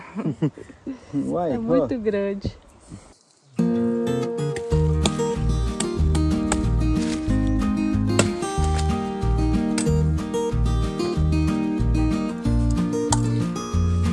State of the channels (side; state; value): both; identical; correlation 1.00